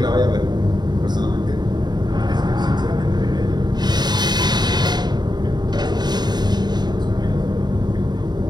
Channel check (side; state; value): left; late; 0.20 ms